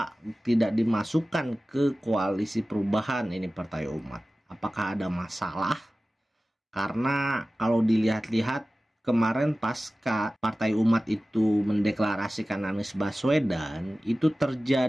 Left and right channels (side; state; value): both; normal; correlation 0.96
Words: tidak dimasukkan ke koalisi perubahan ini Partai Umat. Apakah ada masalah? Karena kalau dilihat-lihat kemarin pasca Partai Umat itu mendeklarasikan Anies Baswedan, itu